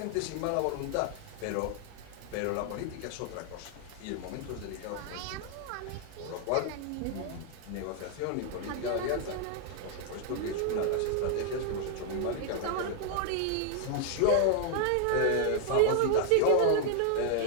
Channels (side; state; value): both; different; correlation 0.00